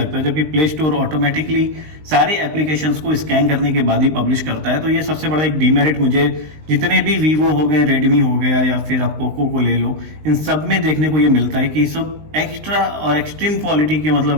है, जबकि प्ले स्टोर ऑटोमेटिकली सारे एप्लीकेशंस को स्कैन करने के बाद ही पब्लिश करता है। तो ये सबसे बड़ा एक डीमेरिट मुझे जितने भी वीवो हो गए, रेडमी हो गया, या फिर आप पोको को ले लो, इन सब में देखने को ये मिलता है कि सब एक्स्ट्रा और एक्सट्रीम क्वालिटी के,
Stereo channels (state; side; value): late; left; 19 ms